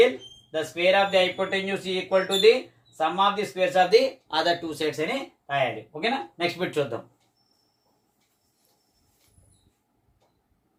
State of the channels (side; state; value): both; identical; correlation 1.00